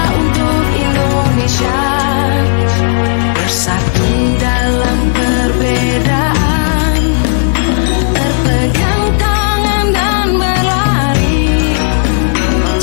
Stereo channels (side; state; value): right; silent; 59 dB below the other